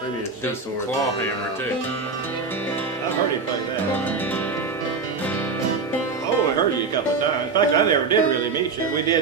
Maybe it's do C some chord. claw hammer too. I've heard him play that. Oh, I heard you a couple of times. In fact, I never did really meet you. We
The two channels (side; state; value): left; quieter; 4.6 dB